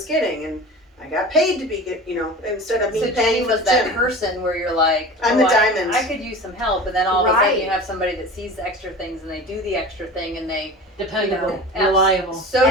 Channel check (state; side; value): normal; both; correlation 0.35